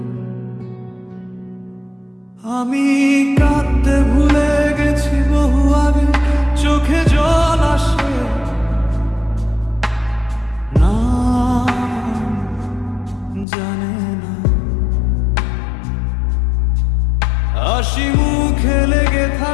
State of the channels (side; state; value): right; drops out; at 13.5 s